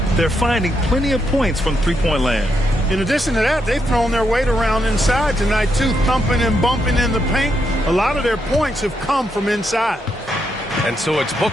They're finding plenty of points from three-point land. In addition to that, they've thrown their weight around inside tonight, too, thumping and bumping in the paint. A lot of their points have come from inside. And so it's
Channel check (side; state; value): both; normal; correlation 0.80